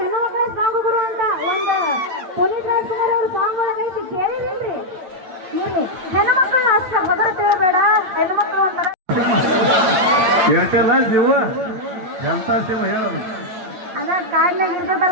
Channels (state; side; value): late; left; 9.1 ms